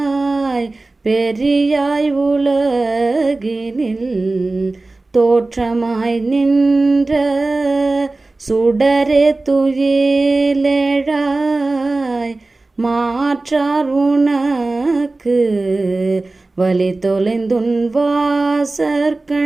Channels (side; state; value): left; quieter; 3.2 dB